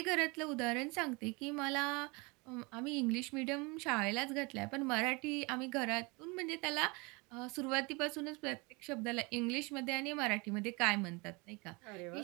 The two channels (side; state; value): left; quieter; 27.7 dB